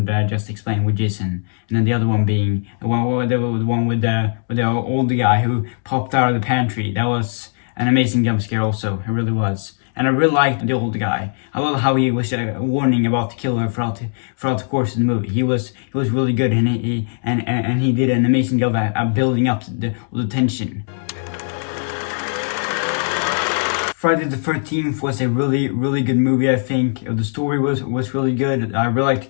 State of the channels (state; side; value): silent; right; digital silence